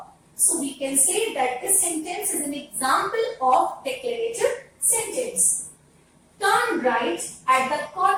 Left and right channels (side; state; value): both; identical; correlation 1.00